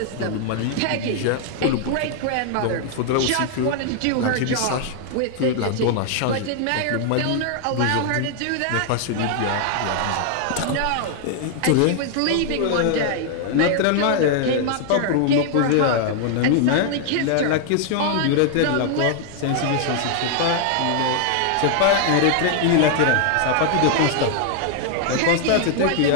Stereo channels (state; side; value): different; both; correlation 0.00